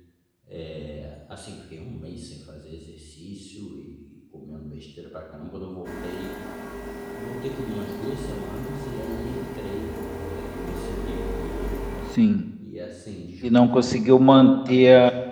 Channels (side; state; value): both; identical; correlation 1.00